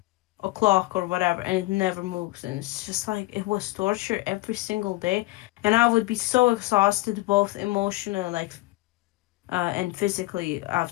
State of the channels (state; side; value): quieter; right; 20.2 dB